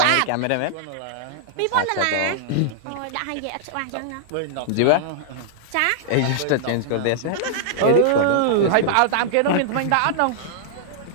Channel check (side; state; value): both; different; correlation -0.01